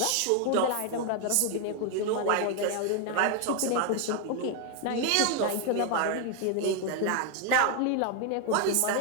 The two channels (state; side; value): different; both; correlation 0.01